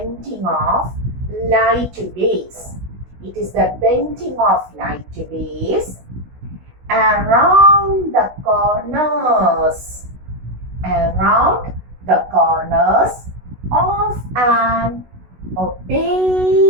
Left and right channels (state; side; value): late; left; 16 ms